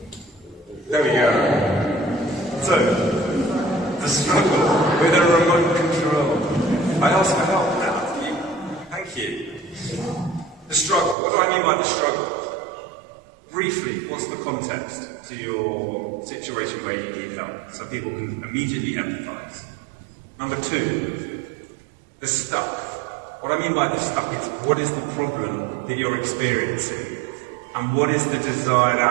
There we go. So, the struggle with a remote control. I ask for help now. Thank you. The struggle. What do I mean by the struggle? Briefly, what's the context to your situation where you need help, so people can immediately empathise? Number 2, the stuck. What I mean by the stuck is, what is the problem that you're experiencing? And what is the desired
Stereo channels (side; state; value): left; drops out; at 11.2 s